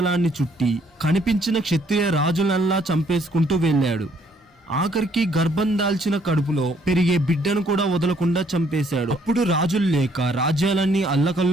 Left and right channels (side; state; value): both; normal; correlation 0.66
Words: చుట్టి కనిపించిన క్షత్రియ రాజులల్లా చంపేసుకుంటూ వెళ్ళాడు. ఆఖరికి గర్భం దాల్చిన కడుపులో పెరిగే బిడ్డను కూడా వదలకుండా చంపేశాడు. అప్పుడు రాజులు లేక రాజ్యాలన్నీ